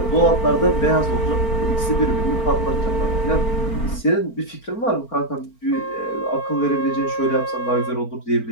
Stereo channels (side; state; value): right; late; 4.4 ms